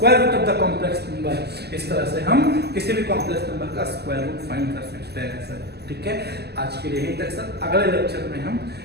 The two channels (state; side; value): late; left; 0.47 ms